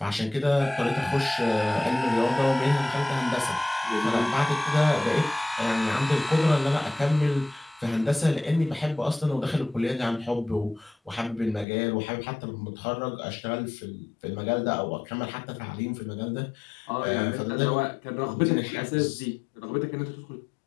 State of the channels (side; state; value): right; drops out; at 11.7 s